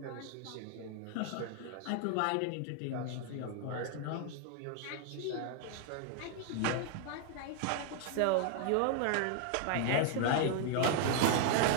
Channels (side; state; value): both; different; correlation 0.00